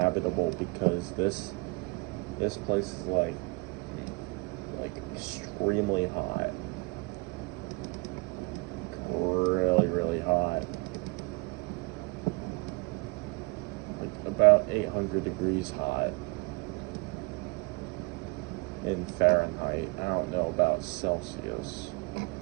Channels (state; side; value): quieter; left; 27.1 dB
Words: because this place is like extremely hot. Really hot. Like about 800 degrees hot in Fahrenheit. I don't know about Celsius.